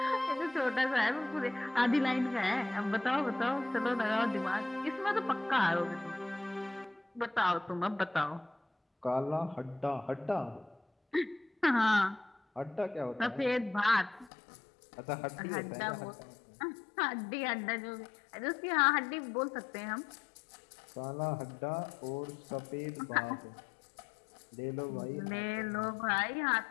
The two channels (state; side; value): drops out; right; at 14.3 s